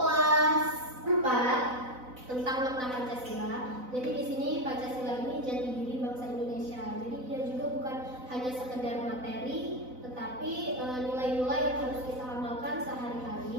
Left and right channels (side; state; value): left; late; 4.0 ms